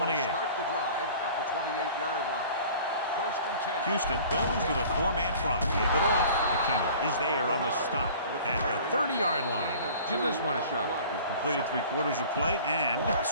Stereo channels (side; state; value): both; inverted; correlation -0.46